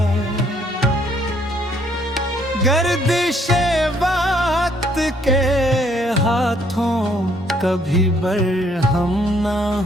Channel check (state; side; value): normal; both; correlation 0.66